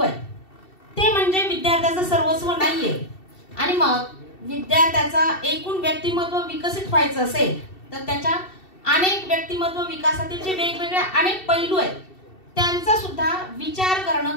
आहे, ते म्हणजे विद्यार्थ्याचं सर्वस्व नाहीये। आणि मग विद्यार्थ्याचा एकूण व्यक्तिमत्व विकसित व्हायचं असेल तर त्याच्या अनेक व्यक्तिमत्व विकासातील जे वेगवेगळे अनेक पैलू आहेत त्यांचा सुद्धा विचार करणं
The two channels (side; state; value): right; late; 2.7 ms